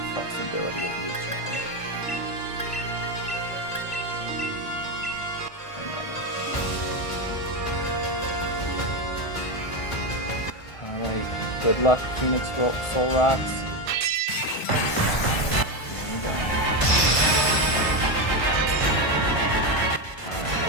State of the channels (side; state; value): right; late; 1.5 ms